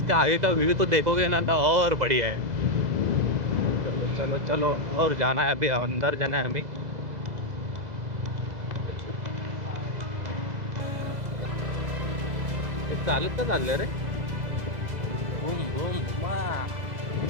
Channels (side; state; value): left; late; 2.0 ms